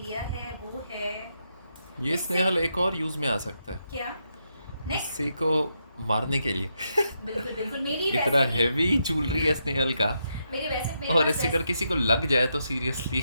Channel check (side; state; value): both; inverted; correlation -0.82